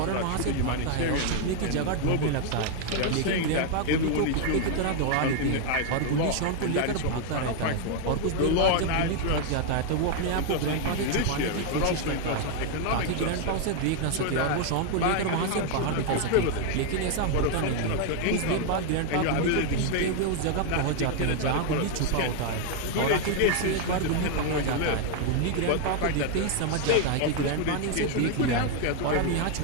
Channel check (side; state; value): both; different; correlation 0.00